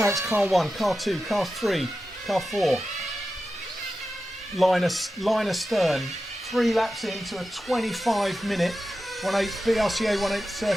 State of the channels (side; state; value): both; normal; correlation 0.92